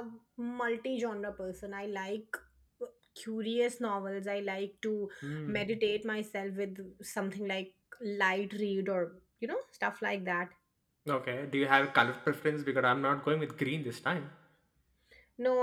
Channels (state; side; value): identical; both; correlation 1.00